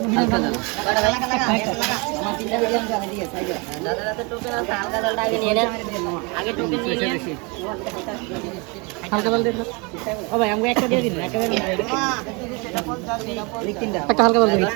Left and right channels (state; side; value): quieter; left; 29.8 dB